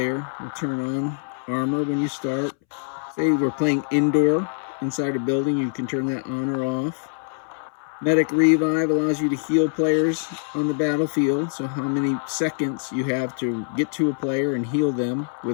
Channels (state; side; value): silent; right; 63 dB below the other